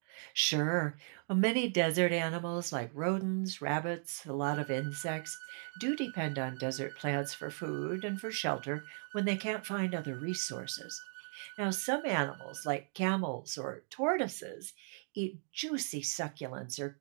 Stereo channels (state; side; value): silent; left; 53 dB below the other